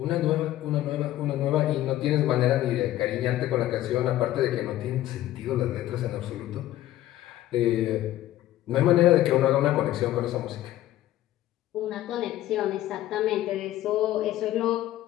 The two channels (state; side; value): quieter; right; 14.2 dB